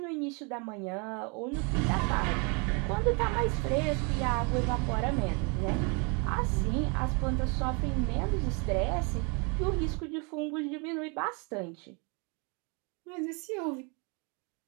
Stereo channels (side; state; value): left; quieter; 33.1 dB